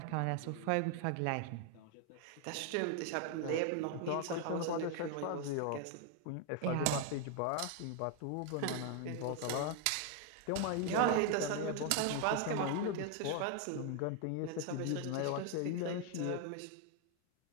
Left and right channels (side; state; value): both; different; correlation 0.01